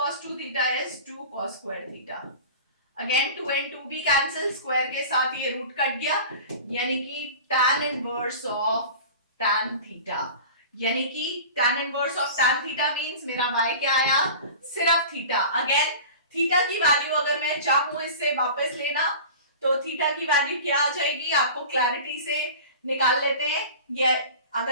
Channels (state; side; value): inverted; both; correlation -0.37